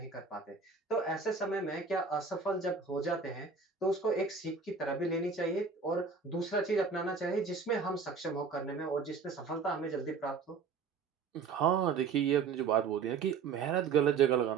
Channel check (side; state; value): left; quieter; 5.3 dB